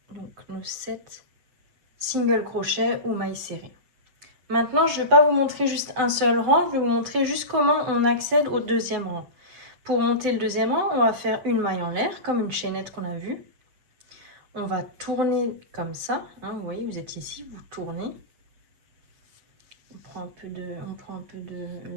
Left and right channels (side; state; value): left; late; 7.8 ms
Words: Donc nos 7 single crochets ou mailles serrées. Maintenant, je ne vais pas vous montrer juste un seul rang, je vais vous montrer juste comment on accède au deuxième rang. Pour monter le deuxième rang, on va faire une maille en l'air, comme une chaînette qu'on a vue. On va tourner comme ça, hein, vous voyez, vous êtes ici, vous tournez. On prend un peu de